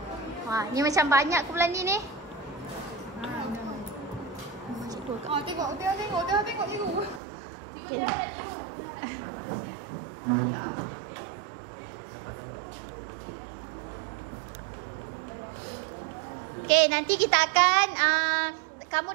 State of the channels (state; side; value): drops out; left; at 7.2 s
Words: Wah, ni macam banyak kumpulan ni. Oh, tengok. Okay. Okay, nanti kita akan kamu